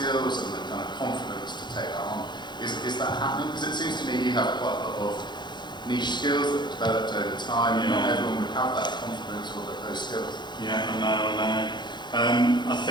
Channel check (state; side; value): late; right; 0.21 ms